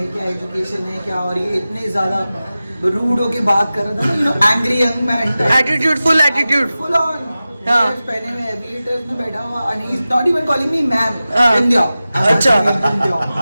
क्या एजुकेशन है, क्या, और ये इतने ज्यादा रूड होके बात कर रहा था ना, angry young man, attitude, full attitude, full on. हाँ। पहने में एविएटर्स में बैठा हुआ and he's not even calling me ma'am. हाँ। बिंदिया। अच्छा। बिंदिया।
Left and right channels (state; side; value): inverted; both; correlation -0.95